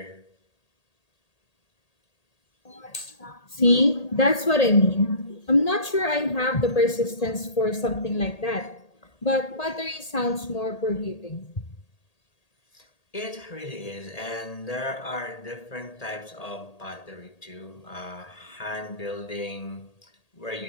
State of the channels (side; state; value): right; late; 1.8 ms